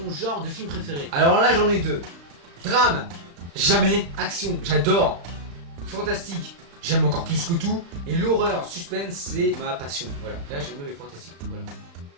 genre de film préféré? Alors là, j'en ai deux. Drame, jamais. Action, j'adore. Fantastique, j'aime encore plus que tout. Et l'horreur, suspense, c'est ma passion. Voilà, là j'aime les fantastiques. Voilà.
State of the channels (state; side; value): late; left; 35 ms